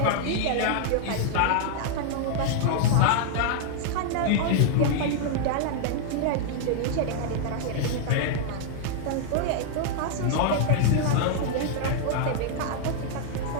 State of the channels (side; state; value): both; different; correlation -0.01